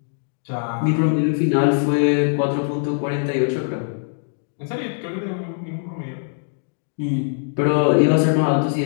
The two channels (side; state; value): right; silent; digital silence